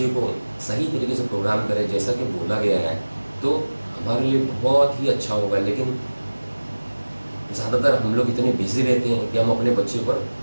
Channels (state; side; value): inverted; both; correlation -1.00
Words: को सही तरीके से प्रोग्राम करें जैसा कि बोला गया है तो हमारे लिए बहुत ही अच्छा होगा। लेकिन ज़्यादातर हम लोग इतने बिजी रहते हैं कि हम अपने बच्चे पर